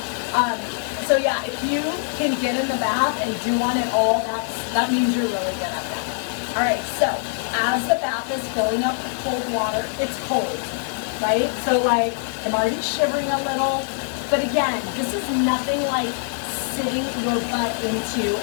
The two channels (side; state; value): right; silent; 57 dB below the other